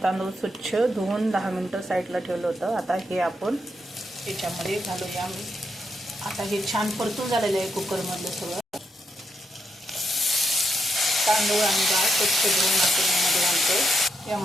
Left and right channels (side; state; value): both; normal; correlation 0.81